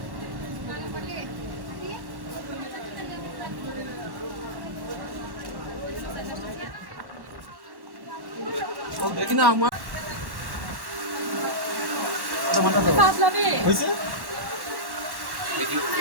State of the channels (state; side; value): late; left; 1.1 ms